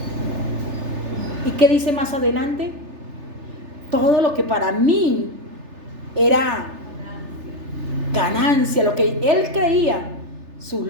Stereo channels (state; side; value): late; left; 3.3 ms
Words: ¿Y qué dice más adelante? Todo lo que para mí era ganancia, lo que él creía, sus